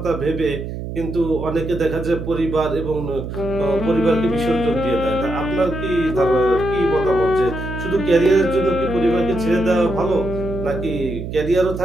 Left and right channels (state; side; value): noise; right; hum, 7 dB below the sound